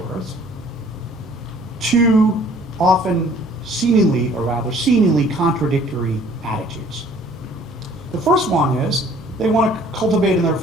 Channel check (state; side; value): normal; both; correlation 0.55